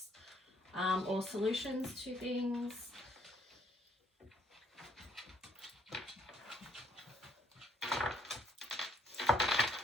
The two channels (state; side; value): normal; both; correlation 0.67